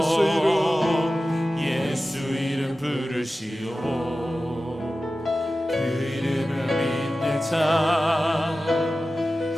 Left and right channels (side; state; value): both; normal; correlation 0.94